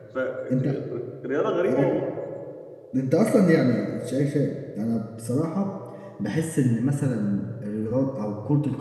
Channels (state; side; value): identical; both; correlation 1.00